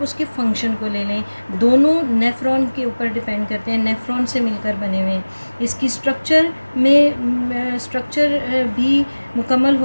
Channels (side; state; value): both; inverted; correlation -1.00